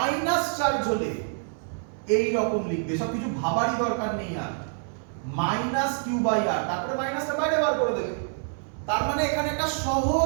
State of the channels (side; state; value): left; silent; 60 dB below the other